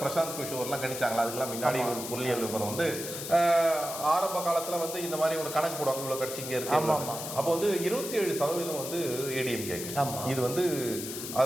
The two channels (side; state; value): left; noise; hiss, 7 dB below the sound